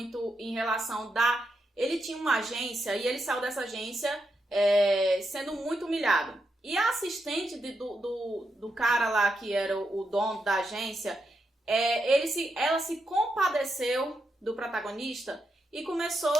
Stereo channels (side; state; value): both; normal; correlation 0.84